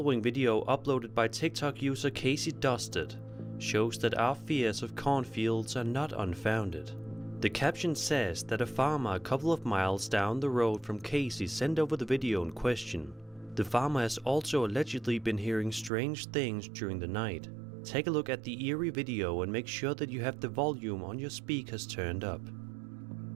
video, uploaded by TikTok user Casey Dusted, shows that our fears of cornfields are not unfounded. The caption says that a farmer a couple of miles down the road from Casey sent over the video in question. The farmer has also allegedly been hearing strange things during the night. Take a look at the eerie video and make sure that you have the volume on your speakers turned up.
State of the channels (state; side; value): drops out; left; at 15.9 s